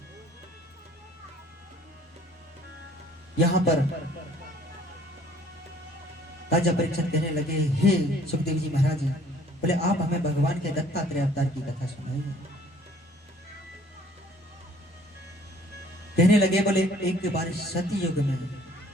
यहां पर राजा परीक्षित कहने लगे, हे सुखदेव जी महाराज, बोले आप हमें भगवान के दत्तात्रेय अवतार की कथा सुनाइए। कहने लगे, बोले एक बार सती युग में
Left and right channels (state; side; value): normal; both; correlation 0.57